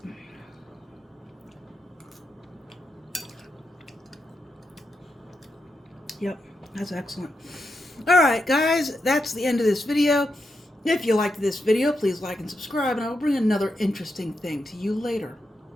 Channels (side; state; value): both; normal; correlation 0.85